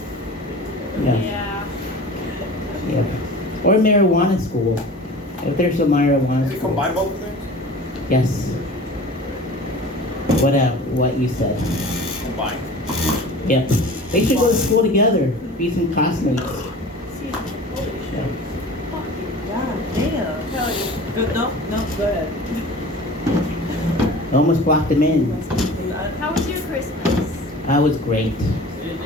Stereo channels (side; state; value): both; normal; correlation 0.40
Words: Yeah. Yeah. Or marijuana school. If there's a marijuana Does it school. combine both things? Yes. What you said. Combine. Yep. They should go to school together. Be some classmates. Yeah. God damn. Hell yeah. No, go ahead. Almost blocked him in. How was your Christmas? That was great.